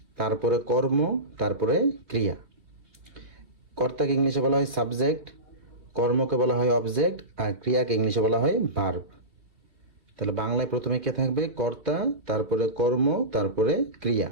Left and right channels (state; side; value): late; left; 2.6 ms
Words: তারপরে কর্ম, তারপরে ক্রিয়া। কর্তাকে ইংলিশে বলা হয় সাবজেক্ট, কর্মকে বলা হয় অবজেক্ট, আর ক্রিয়াকে ইংলিশে বলা হয় ভার্ব। তাহলে বাংলায় প্রথমে কে থাকবে? কর্তা, তারপরে কর্ম, তারপরে ক্রিয়া,